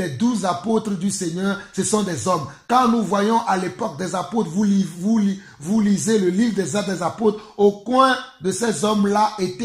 12 apôtres du Seigneur, ce sont des hommes. Quand nous voyons à l'époque des apôtres, vous lisez le livre des Actes des apôtres, au coin de ces hommes-là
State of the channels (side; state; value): both; identical; correlation 1.00